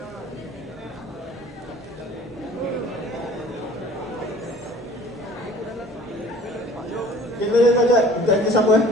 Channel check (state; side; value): normal; both; correlation 0.48